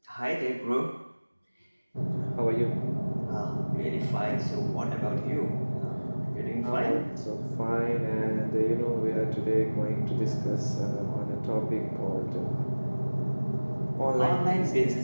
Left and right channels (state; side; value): inverted; both; correlation -1.00